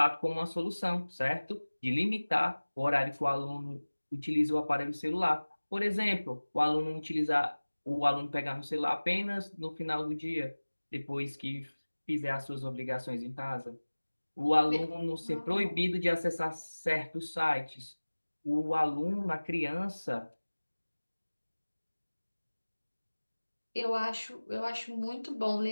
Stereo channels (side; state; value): both; inverted; correlation -1.00